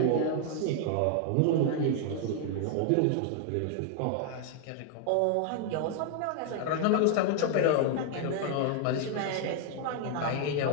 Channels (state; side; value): different; both; correlation 0.00